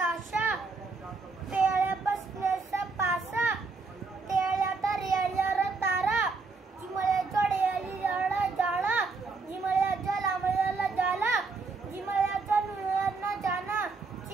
पेड़े बसनेसा पासा तेड़े रेलिया तारा जिमले रेली जाला जिमले लामलियाला जाला जिमले नुनालियाना जाना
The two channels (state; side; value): quieter; left; 4.2 dB